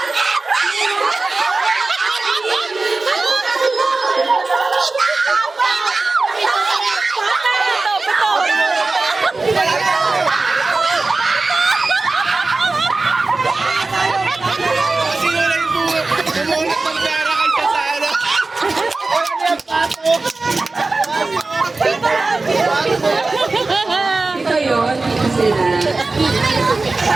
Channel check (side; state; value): left; quieter; 3.5 dB